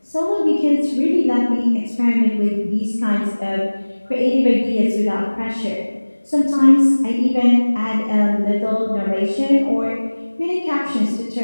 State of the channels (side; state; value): both; inverted; correlation -1.00